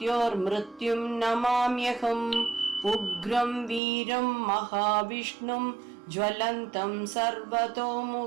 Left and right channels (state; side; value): drops out; left; at 3.8 s